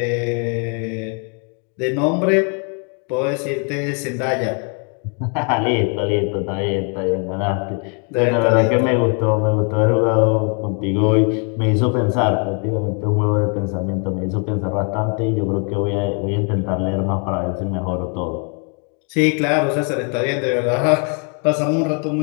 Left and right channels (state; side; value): quieter; right; 38.9 dB